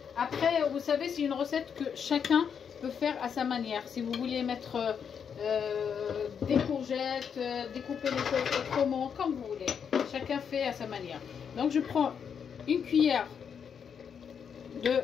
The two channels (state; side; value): quieter; right; 7.2 dB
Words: Après, vous savez, c'est une recette que chacun peut faire à sa manière. Si vous voulez mettre des courgettes, découper les choses autrement, comme vous voulez. Chacun fait à sa manière. Donc je prends une cuillère de